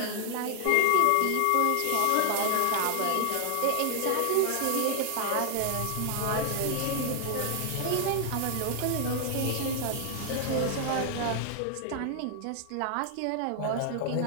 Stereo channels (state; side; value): different; both; correlation 0.00